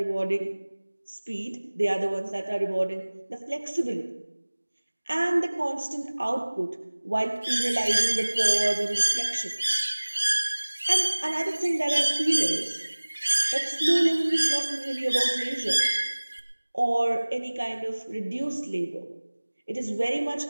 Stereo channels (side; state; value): both; inverted; correlation -1.00